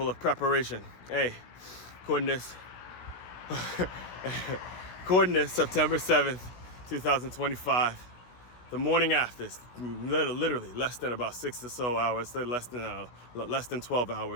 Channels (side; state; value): right; late; 17 ms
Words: of preparation. Hey, coordinates. Coordinates, September 7th, 2025. The morning after, it's literally less than about 6 or so hours, less than 12